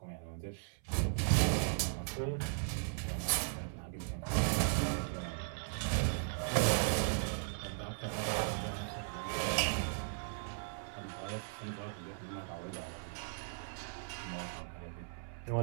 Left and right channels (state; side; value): silent; left; 53 dB below the other